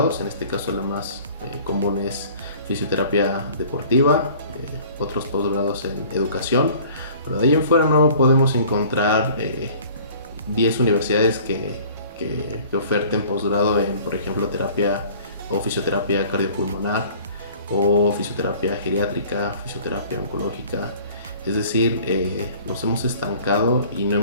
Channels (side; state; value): both; inverted; correlation -0.49